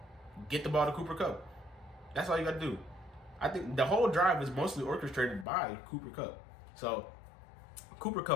get the ball to Cooper Kupp. That's all you got to do. I think the whole drive is mostly orchestrated by Cooper Kupp. So Cooper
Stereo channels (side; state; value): right; drops out; at 5.5 s